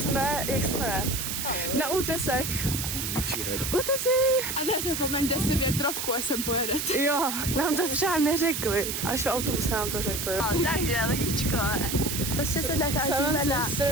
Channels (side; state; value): right; noise; hiss, 3 dB below the sound